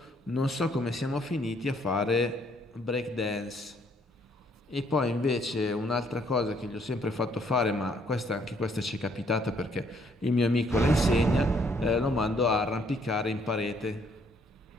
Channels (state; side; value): normal; both; correlation 0.67